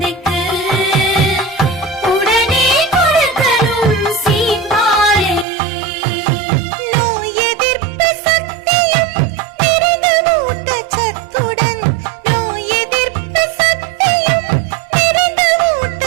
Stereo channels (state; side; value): drops out; left; at 5.5 s